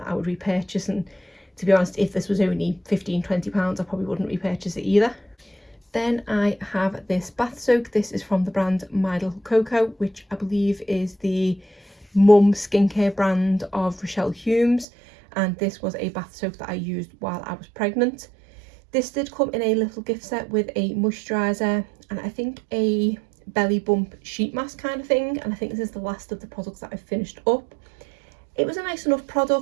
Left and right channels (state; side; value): drops out; left; at 14.9 s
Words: I would repurchase. And to be honest, if this was only £15–20, I probably wouldn't repurchase it either. Then I have this bath soak. This is from the brand My Little Coco, which I believe is the mum skincare brand of Rochelle Humes, and this was a bath soak that I used while I was pregnant. This did come in a little gift set with a moisturiser and I think a belly bump sheet mask kind of thing, and I think this is the last of the products that I've finished up. It was a nice enough